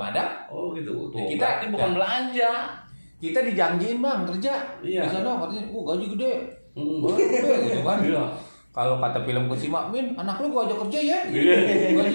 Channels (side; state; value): both; inverted; correlation -1.00